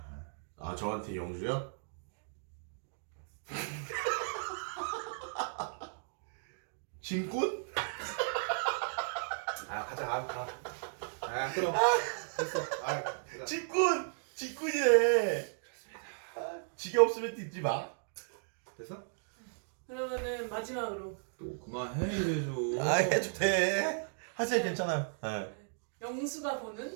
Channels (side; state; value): left; silent; digital silence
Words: 아 저한테 영주요? 짐꾼? 가자, 가. 그럼 됐어. 가자. 짐꾼! 짐꾼이래. 지게 없으면 뛰지 마. 됐어? 그러면은 마지막으로 또 그만해 이래줘. 해도 돼. 하세요. 괜찮아요. 네. 영수가